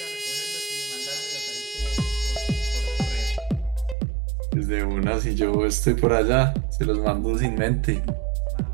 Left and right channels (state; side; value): drops out; left; at 4.0 s